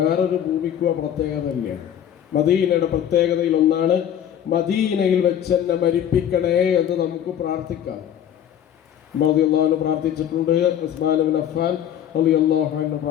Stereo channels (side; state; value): right; quieter; 10.0 dB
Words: ഭൂമിക്കുക പ്രത്യേകതയില്ല. മദീനയുടെ പ്രത്യേകതയിൽ ഒന്നാണ്, മദീനയിൽ വെച്ച് എന്നെ മരിപ്പിക്കണേ എന്ന് നമുക്ക് പ്രാർത്ഥിക്കാം. റളിയല്ലാഹു അൻഹു പ്രാർത്ഥിച്ചിട്ടുണ്ട്, ഉസ്മാൻ ഇബ്നു അഫ്ഫാൻ റളിയല്ലാഹു അൻഹു